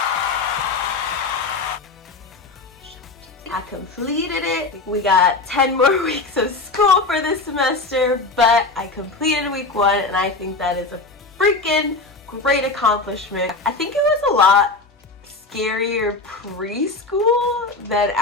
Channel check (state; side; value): quieter; right; 3.6 dB